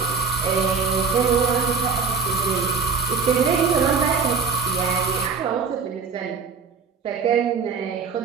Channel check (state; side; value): quieter; left; 5.3 dB